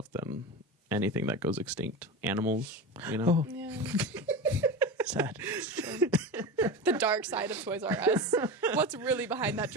than anything that goes extinct. Animals, you know? Oh. Yeah. Sad. The dark side of Toys R Us. What's really behind that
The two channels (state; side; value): normal; both; correlation 0.25